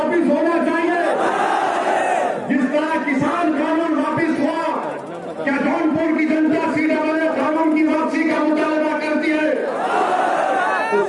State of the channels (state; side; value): identical; both; correlation 1.00